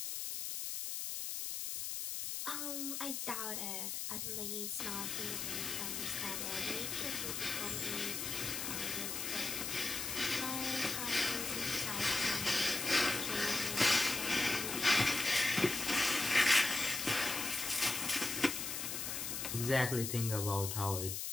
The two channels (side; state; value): left; noise; hiss, 3 dB below the sound